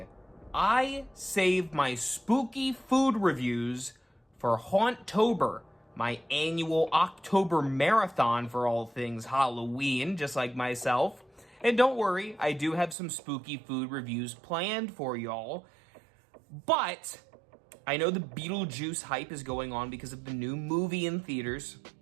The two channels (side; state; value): left; drops out; at 13.0 s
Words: I save my spooky food reviews for Hauntober, my annual October marathon for all things Halloween, just like myself. And don't worry, I do have some spooky food reviews planned for y'all. But I know the Beetlejuice hype is going on because of the new movie in theaters.